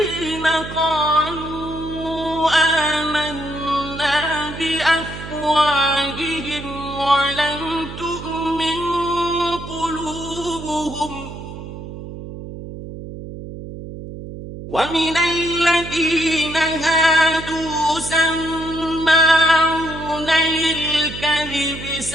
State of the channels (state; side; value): noise; right; hum, 11 dB below the sound